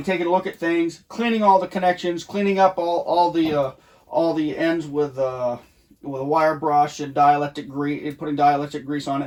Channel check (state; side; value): identical; both; correlation 1.00